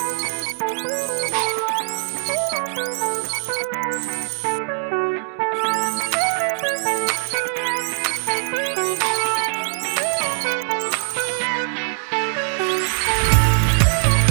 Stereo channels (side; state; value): left; silent; 64 dB below the other